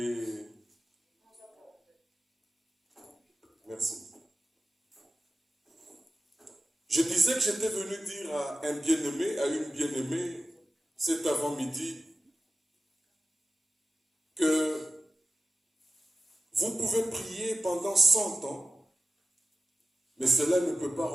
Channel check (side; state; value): both; normal; correlation 0.93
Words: Merci. Je disais que j'étais venu dire à un bien-aimé, à une bien-aimée, cet avant-midi, que vous pouvez prier pendant 100 ans, mais cela ne peut pas